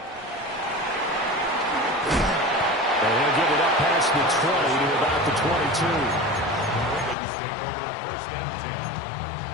And he'll get it up past the 20 to about the 22. Ravens take over 1st and 10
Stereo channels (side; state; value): right; drops out; at 7.2 s